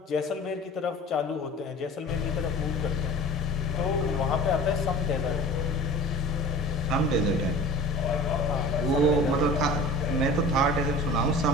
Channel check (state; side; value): normal; both; correlation 0.39